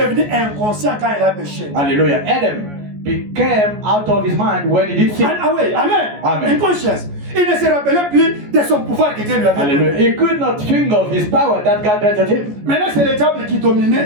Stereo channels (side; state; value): left; late; 14 ms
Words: inconscient quand il a péché. Hallelujah. Adam became out of his mind when he did sin. And away, amen. Amen. Inconscience. Il ne se rappelait plus de son pouvoir que Dieu lui avait Hallelujah. donné. He could not think of his power that God granted him. Maintenant, c'est le diable qui dominait